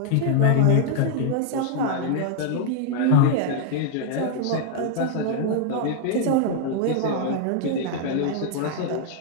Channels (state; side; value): different; both; correlation 0.00